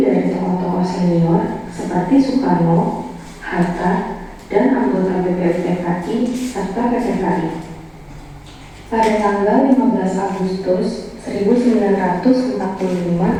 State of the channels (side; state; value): both; identical; correlation 1.00